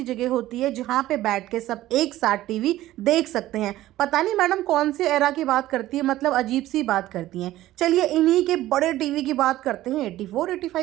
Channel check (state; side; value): quieter; left; 15.2 dB